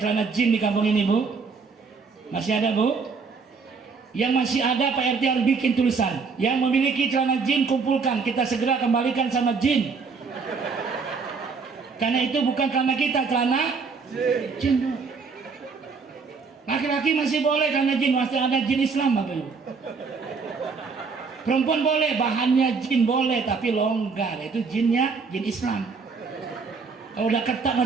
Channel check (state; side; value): quieter; left; 4.9 dB